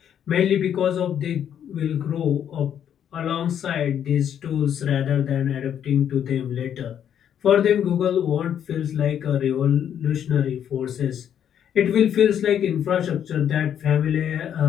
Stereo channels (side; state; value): right; quieter; 9.3 dB